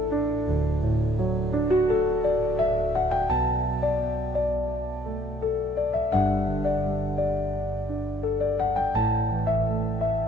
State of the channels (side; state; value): both; normal; correlation 0.63